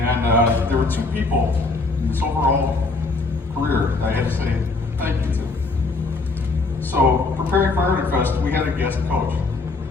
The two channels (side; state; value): right; quieter; 3.6 dB